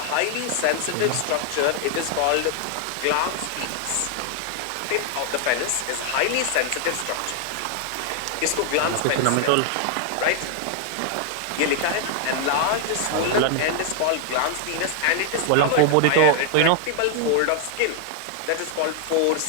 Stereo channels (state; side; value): different; both; correlation 0.00